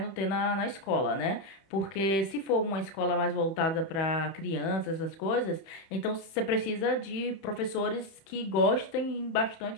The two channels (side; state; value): right; late; 31 ms